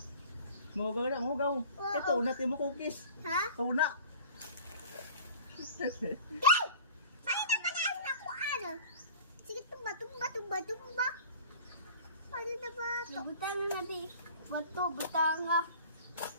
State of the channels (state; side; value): inverted; both; correlation -0.44